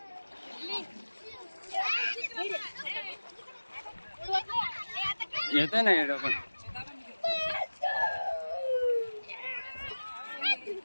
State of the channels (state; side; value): inverted; both; correlation -1.00